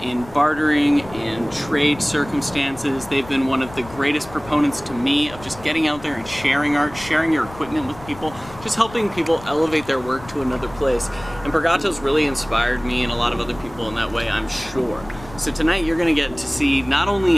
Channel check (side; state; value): left; noise; rumble, 18 dB below the sound